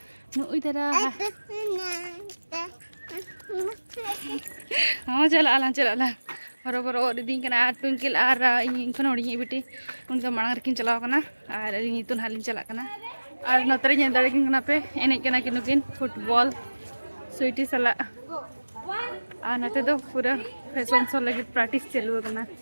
नुई दरा हां चला बरोबर और दिन कना ट्विंकल और इन खन होड़ी बिटी उनका मांग रकिन चलाव कना और इन तो ना लिंग चला कना और नतरे नेल दड़े किन पे एने कना किनुकिन फुटबॉल स्वीटी सला और नते दो पूरा फैशन शो लगे प्रैक्टिस चलू करना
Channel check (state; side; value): inverted; both; correlation -1.00